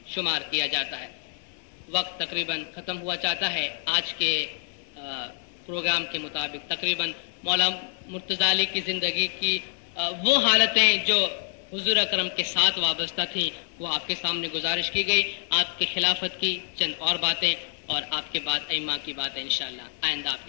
شمار کیا جاتا ہے۔ وقت تقریباً ختم ہوا چاہتا ہے۔ آج کے پروگرام کے مطابق تقریباً مولا مرتضیٰ علی کی زندگی کی وہ حالتیں جو حضور اکرم کے ساتھ وابستہ تھیں وہ آپ کے سامنے گزارش کی گئی۔ آپ کی خلافت کی چند اور باتیں اور آپ کے بعد ائمہ کی باتیں انشاءاللہ آئندہ آپ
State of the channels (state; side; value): silent; right; 60 dB below the other